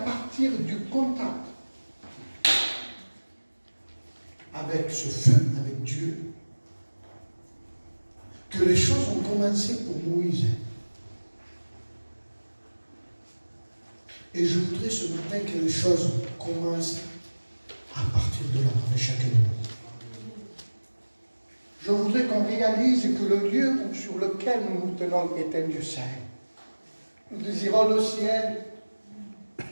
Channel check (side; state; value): both; inverted; correlation -1.00